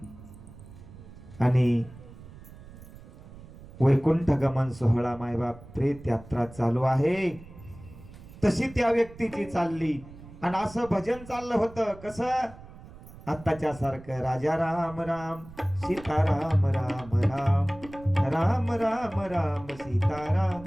आणि वैकुंठ गमन सोहळा मायबाप प्रेत यात्रा चालू आहे, तशी त्या व्यक्तीची चालली. आणि असं भजन चाललं होतं कसं, आत्ताच्या सारखं राजा राम राम सीताराम राम राम, राम राम राम सीताराम.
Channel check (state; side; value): noise; right; rumble, 18 dB below the sound